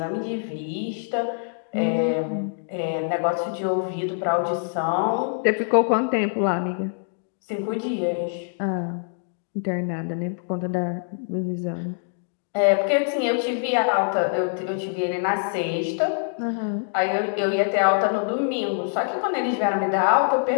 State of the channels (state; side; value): silent; right; digital silence